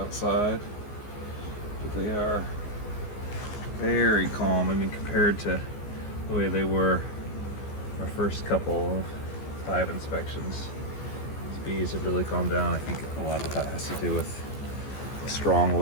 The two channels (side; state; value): right; late; 14 ms